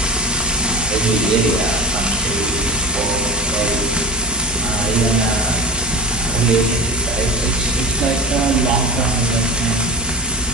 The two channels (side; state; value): both; normal; correlation 0.32